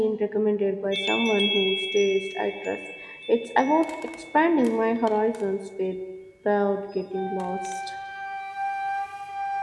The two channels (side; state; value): both; identical; correlation 1.00